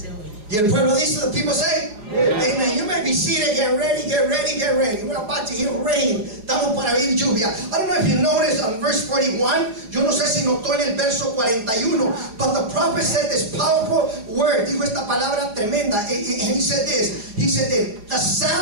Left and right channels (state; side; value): late; left; 4.8 ms